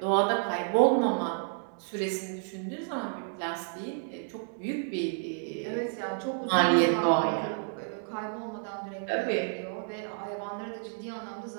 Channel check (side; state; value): left; silent; 57 dB below the other